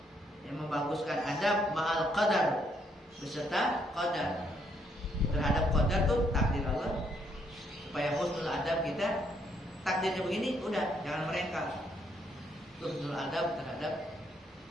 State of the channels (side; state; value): both; normal; correlation 0.72